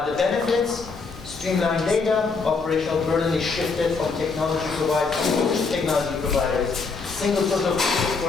The benefits, streamlined data, operational burden is shifted from technology providers. Single source of truth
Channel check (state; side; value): quieter; right; 4.5 dB